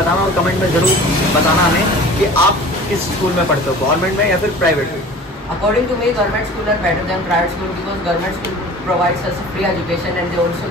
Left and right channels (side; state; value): both; normal; correlation 0.42